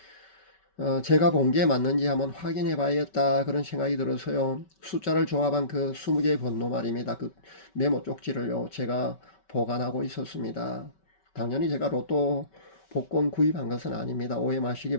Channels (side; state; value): right; late; 5.2 ms